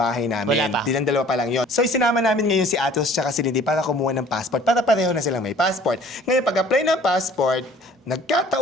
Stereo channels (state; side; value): normal; both; correlation 0.52